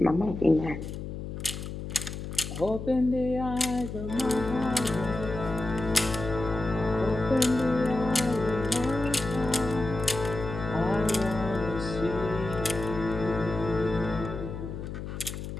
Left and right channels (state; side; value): noise; left; hum, 7 dB below the sound